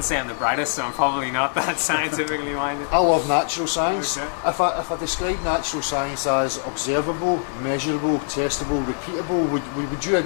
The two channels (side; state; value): right; silent; digital silence